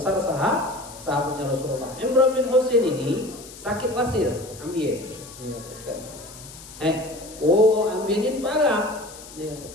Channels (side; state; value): left; noise; hiss, 17 dB below the sound